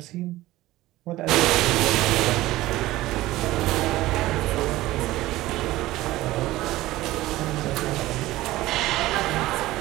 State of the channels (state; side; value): quieter; left; 17.1 dB